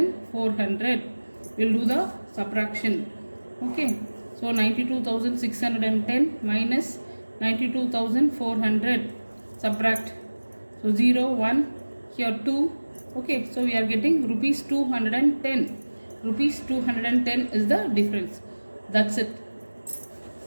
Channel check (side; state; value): both; inverted; correlation -1.00